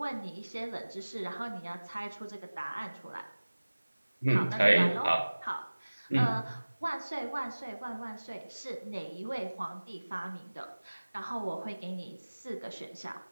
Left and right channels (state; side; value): inverted; both; correlation -1.00